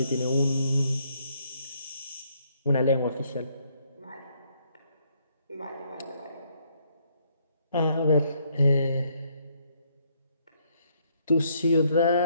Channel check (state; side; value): inverted; both; correlation -0.70